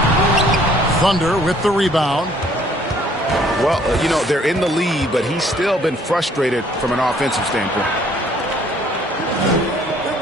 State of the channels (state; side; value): normal; both; correlation 0.60